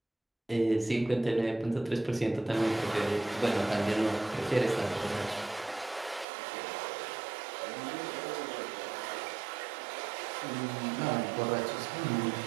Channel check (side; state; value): left; drops out; at 6.2 s